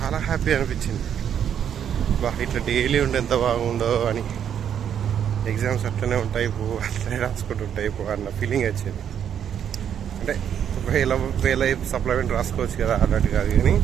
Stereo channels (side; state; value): left; quieter; 8.9 dB